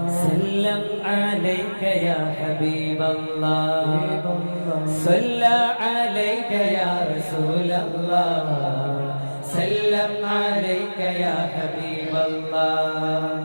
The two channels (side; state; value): both; inverted; correlation -1.00